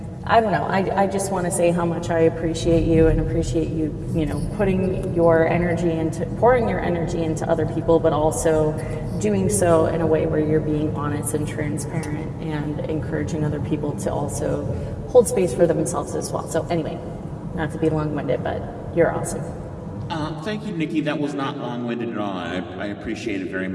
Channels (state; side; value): identical; both; correlation 1.00